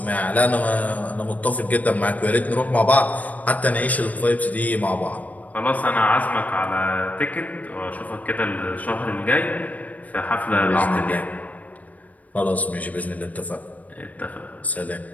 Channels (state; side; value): late; right; 0.073 ms